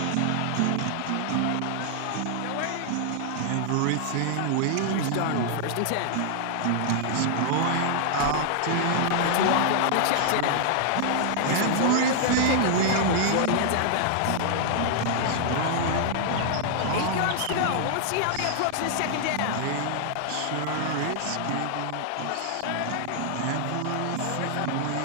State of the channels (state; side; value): different; both; correlation -0.01